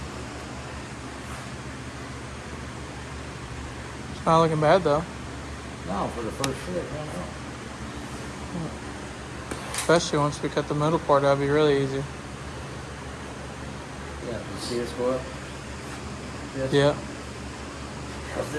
Not looking bad though. No, for the first fit, no. Especially once we cut the middle part, that'd be really easy. Yeah, you see this go up? This? Yeah. Because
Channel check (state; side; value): identical; both; correlation 1.00